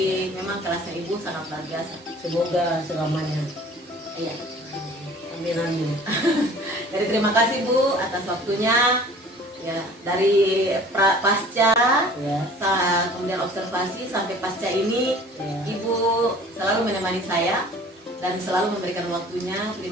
memang kelasnya Ibu sangat luar biasa. Semoga selamanya. Iya. Amin amin. Jadi terima kasih Bu atas waktunya. Ya, dari pasca Ya. kemudian observasi sampai pasca ini Ya. Ibu selalu menemani saya dan selalu memberikan waktunya.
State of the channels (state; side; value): normal; both; correlation 0.48